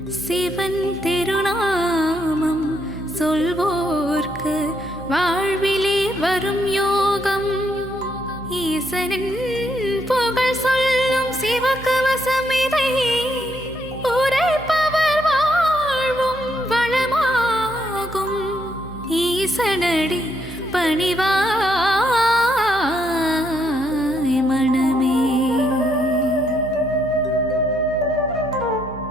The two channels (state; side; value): noise; right; hum, 15 dB below the sound